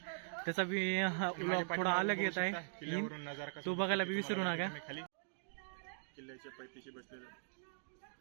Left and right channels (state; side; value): silent; left; digital silence